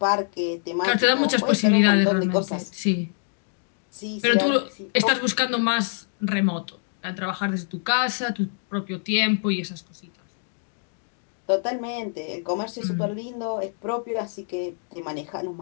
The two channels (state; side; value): silent; right; 62 dB below the other